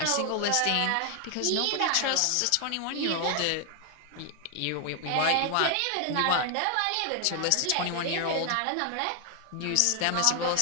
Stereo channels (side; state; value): both; different; correlation 0.00